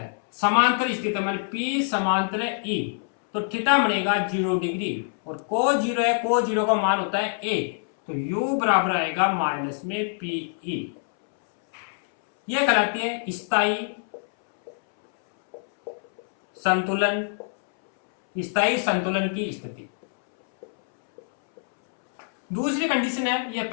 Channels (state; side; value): silent; right; 62 dB below the other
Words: समांतर स्थित है माने P समांतर E, तो थीटा बनेगा 0 डिग्री और कोस 0 है, कोस 0 का मान होता है a, तो u बराबर आएगा माइनस में PE। यह कहलाती है स्थायी संतुलन, स्थायी संतुलन की स्थिति। दूसरी कंडीशन है, यह